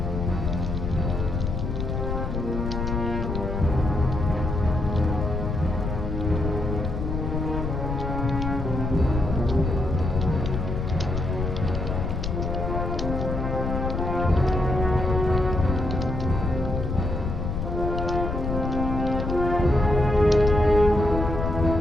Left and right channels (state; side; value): noise; left; rumble, 2 dB below the sound